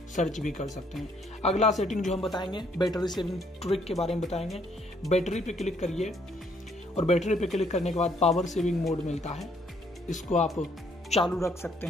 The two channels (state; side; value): normal; both; correlation 0.67